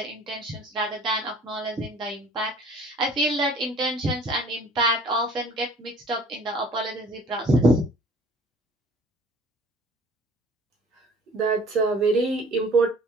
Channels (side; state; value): both; normal; correlation 0.50